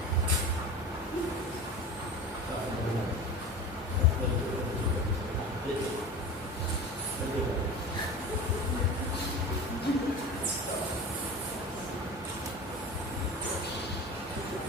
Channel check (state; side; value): normal; both; correlation 0.32